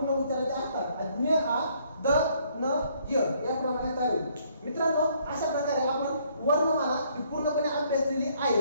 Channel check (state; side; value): inverted; both; correlation -0.66